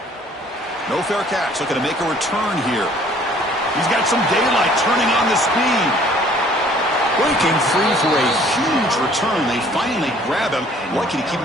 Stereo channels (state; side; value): normal; both; correlation 0.56